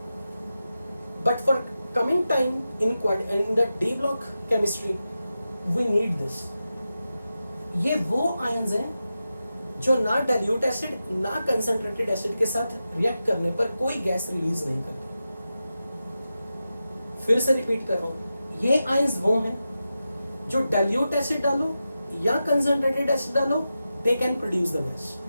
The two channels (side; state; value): both; inverted; correlation -0.91